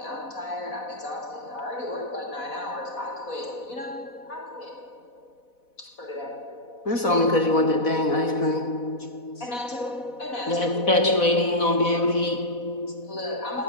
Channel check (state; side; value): late; right; 4.1 ms